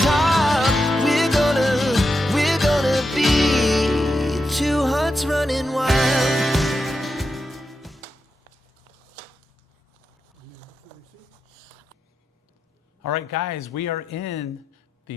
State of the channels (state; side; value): normal; both; correlation 0.87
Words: top. We're gonna be two hearts running wild. All right, guys, we are in